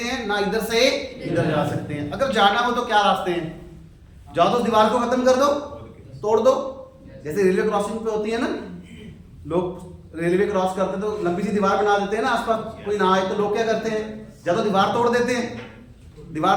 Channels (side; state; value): both; identical; correlation 1.00